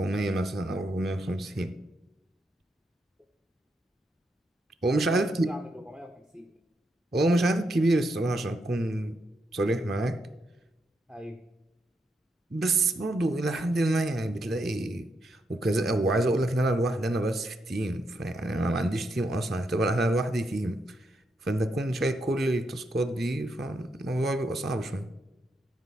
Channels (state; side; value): normal; both; correlation 0.81